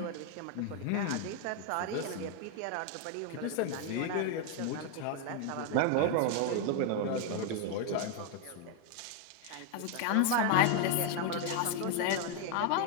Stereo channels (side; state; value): both; different; correlation 0.01